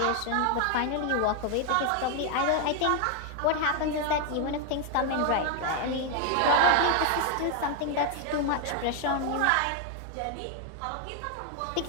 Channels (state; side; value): different; both; correlation 0.01